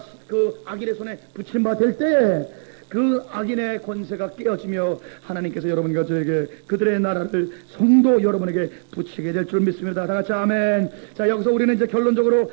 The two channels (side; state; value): left; silent; digital silence